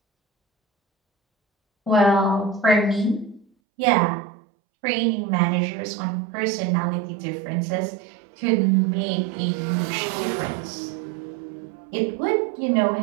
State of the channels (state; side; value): drops out; left; at 3.5 s